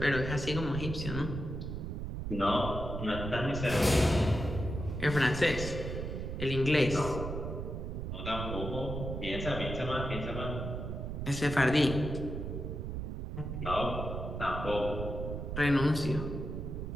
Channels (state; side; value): noise; right; rumble, 5 dB below the sound